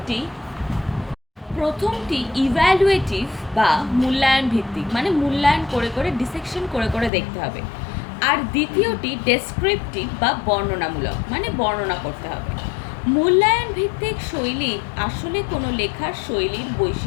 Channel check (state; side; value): drops out; right; at 7.1 s